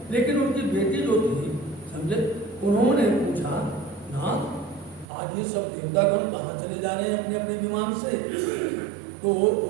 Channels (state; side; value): drops out; left; at 5.1 s